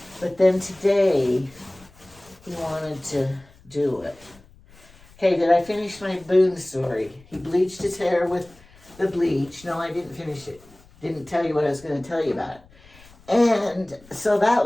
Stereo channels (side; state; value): left; noise; rumble, 26 dB below the sound